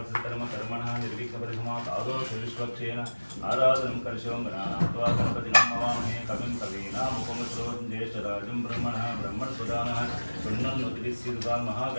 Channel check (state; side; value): inverted; both; correlation -1.00